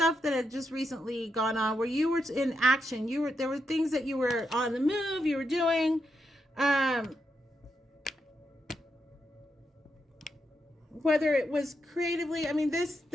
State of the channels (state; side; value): normal; both; correlation 0.83